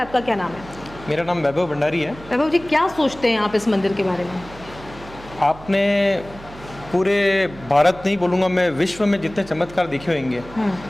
क्या नाम है? मेरा नाम वैभव भंडारी है। वैभव जी, क्या सोचते हैं आप इस मंदिर के बारे में? आपने पूरे भारत नहीं बोलूँगा मैं, विश्व में जितने चमत्कार देखे होंगे,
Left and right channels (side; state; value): right; noise; hum, 18 dB below the sound